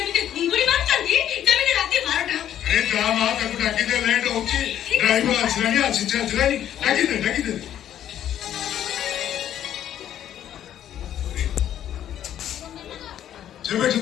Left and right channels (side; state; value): right; quieter; 10.9 dB